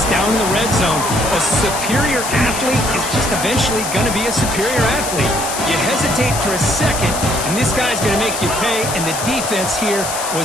down in the red zone, a superior athlete is just eventually going to be a superior athlete. You hesitate for a second, and this guy's going to make you pay, and the defense here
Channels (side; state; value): left; noise; hiss, 5 dB below the sound